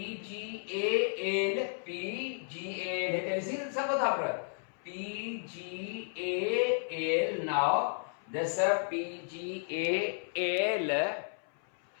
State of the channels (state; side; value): silent; right; 56 dB below the other